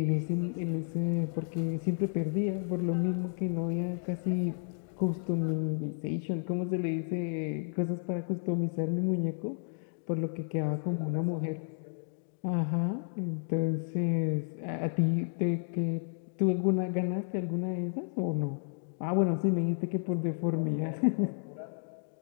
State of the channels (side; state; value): right; silent; digital silence